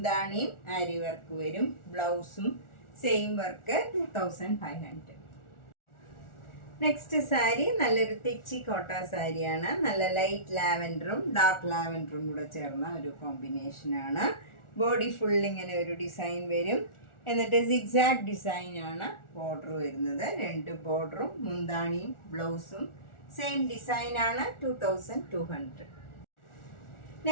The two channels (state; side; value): late; right; 1.4 ms